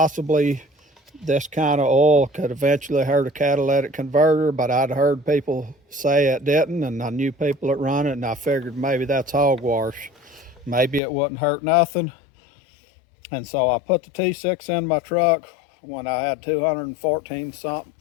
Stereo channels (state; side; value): drops out; right; at 11.0 s